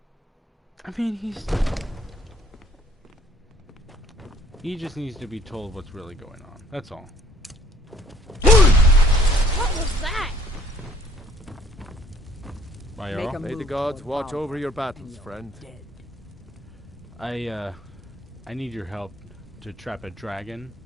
I mean, he just needs to be told what's really going on. That's all. What was that? May the gods watch over your battles, friend. I need your help to trap a dragon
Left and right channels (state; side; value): normal; both; correlation 0.58